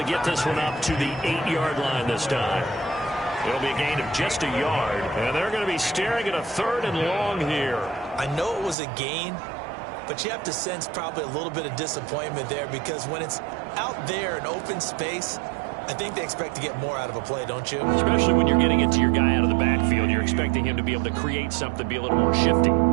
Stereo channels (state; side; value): drops out; left; at 8.8 s